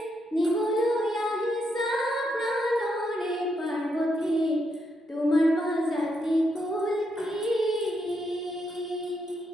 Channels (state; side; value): normal; both; correlation 0.79